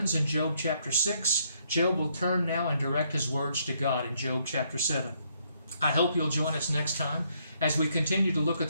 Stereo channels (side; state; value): both; inverted; correlation -0.71